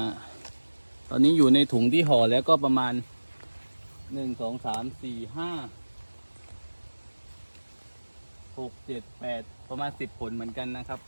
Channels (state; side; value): inverted; both; correlation -1.00